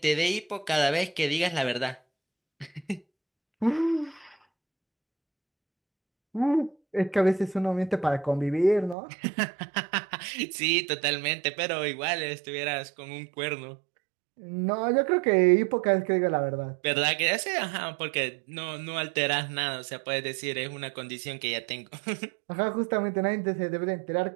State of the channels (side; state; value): left; drops out; at 9.0 s